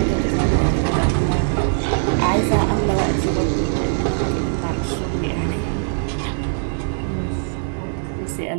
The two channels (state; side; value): silent; left; digital silence